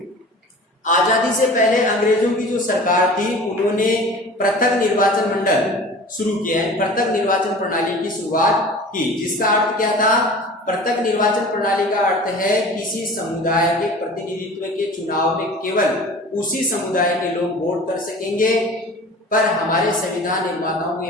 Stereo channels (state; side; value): normal; both; correlation 0.40